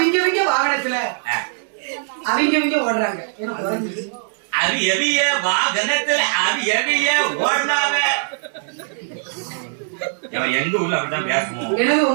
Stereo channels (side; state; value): left; silent; digital silence